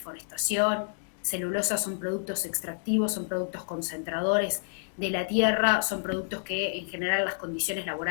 forestación, celulosa. Son productos extractivos, son productos concentradores de la tierra, son productos que en general las condiciones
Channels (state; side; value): silent; right; digital silence